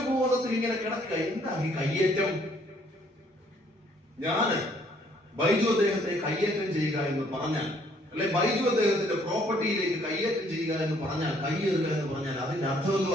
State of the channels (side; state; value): both; normal; correlation 0.64